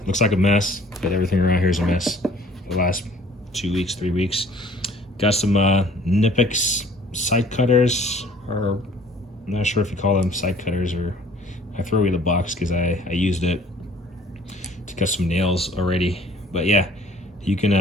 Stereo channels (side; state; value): both; normal; correlation 0.54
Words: Looks like a mess, but everything around here is a mess. The last 2 weeks, 3 weeks. Got some Nipix side cutters, or I'm not sure if you call them side cutters, or I throw away the box because I used it to cut some nails already. But yeah, you